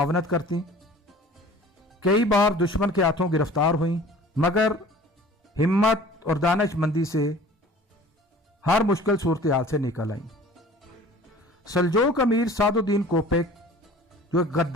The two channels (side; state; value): both; normal; correlation 0.46